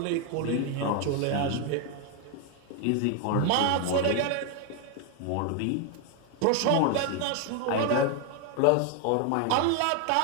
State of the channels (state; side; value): different; both; correlation 0.01